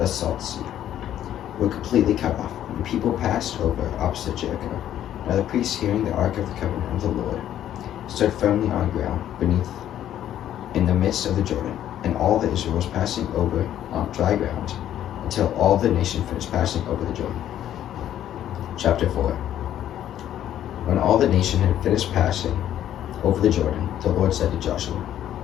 salt sea. were completely cut off. The people passed over opposite Jericho. Now the priests, hearing the ark of the covenant of the Lord, stood firmly on ground beneath in the midst of the Jordan, and all the Israel was passing over on dry ground until all the nation finished passing over the Jordan. Chapter 4. When all the nation had finished passing over the Jordan, the Lord said to Joshua,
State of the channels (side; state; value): right; quieter; 11.3 dB